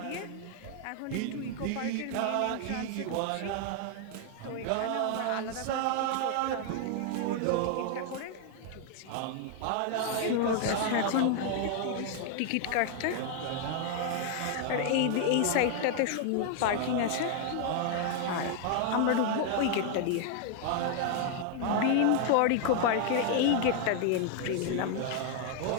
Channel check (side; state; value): both; different; correlation 0.00